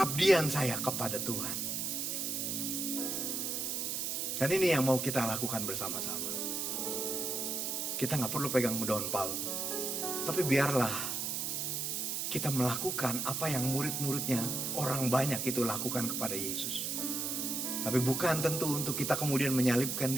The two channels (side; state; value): right; noise; hiss, 1 dB below the sound